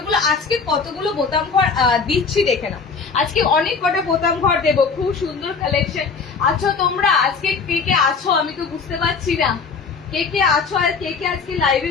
আজকে কতগুলো বোতাম ঘর দিচ্ছি দেখে না। আজকে অনেক কটা বোতাম ঘর দেবো, খুব সুন্দর কালেকশন। আছো তোমরা আজকে কে কে আছো আমি তো বুঝতে পারছি না, কে কে আছো আর কে কে আজকে লাইভে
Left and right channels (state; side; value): quieter; right; 5.1 dB